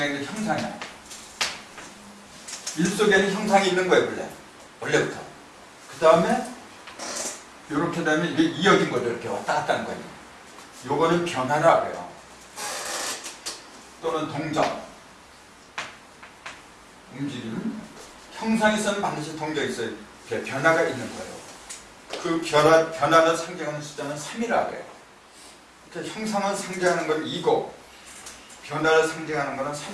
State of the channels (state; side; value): identical; both; correlation 1.00